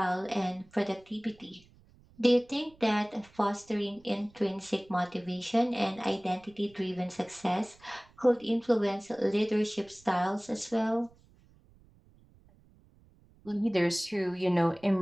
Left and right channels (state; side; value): noise; right; rumble, 28 dB below the sound